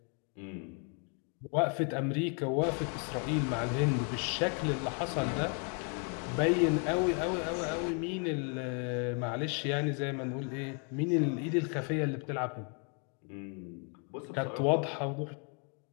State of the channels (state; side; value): quieter; right; 38.3 dB